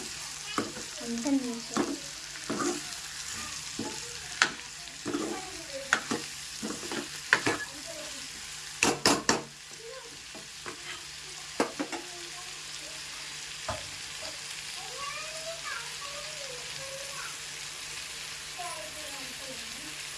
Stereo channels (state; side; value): identical; both; correlation 1.00